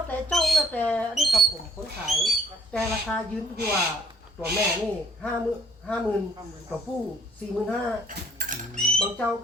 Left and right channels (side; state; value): both; normal; correlation 0.61